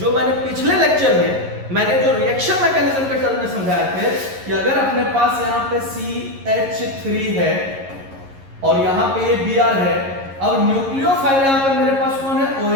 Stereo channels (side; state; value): left; late; 11 ms